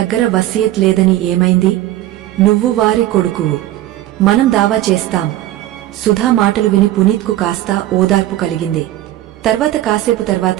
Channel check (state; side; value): quieter; left; 14.6 dB